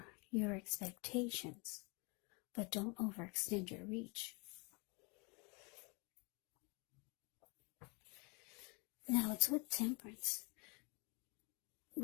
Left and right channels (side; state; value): right; quieter; 30.1 dB